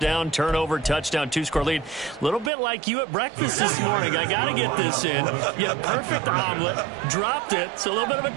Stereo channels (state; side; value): drops out; left; at 2.5 s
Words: turnover, touchdown, 2-score lead. A little bit like you at breakfast this morning. I got to get this in. You had a perfect omelet, dropped it, so a little bit of a